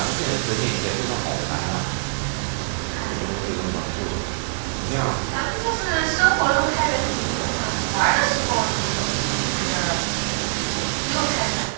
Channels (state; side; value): silent; left; digital silence